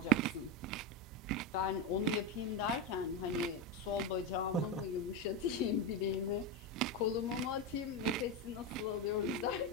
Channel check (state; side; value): normal; both; correlation 0.12